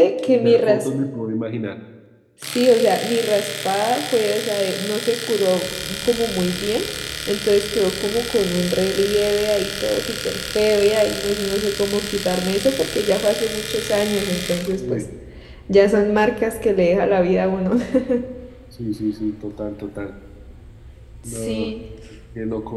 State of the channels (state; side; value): identical; both; correlation 1.00